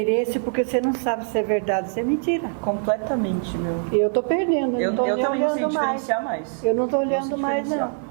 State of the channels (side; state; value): left; silent; digital silence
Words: porque você não sabe se é verdade ou se é mentira. Completamente, meu. Eu estou perdendo, eu não estou também não sei olhando mais. diferenciar mais. Eu não estou Não sei olhando mais, não.